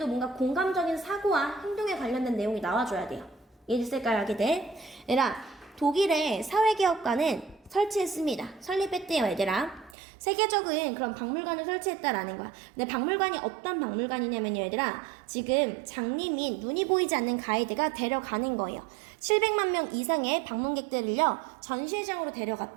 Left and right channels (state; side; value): drops out; left; at 10.0 s